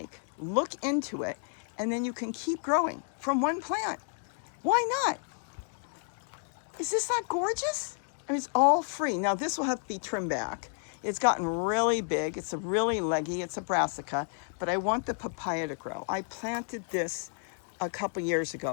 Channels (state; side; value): silent; right; 57 dB below the other